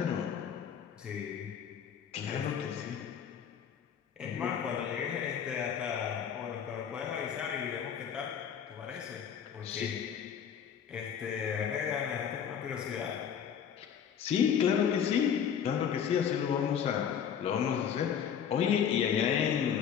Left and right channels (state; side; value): quieter; right; 8.1 dB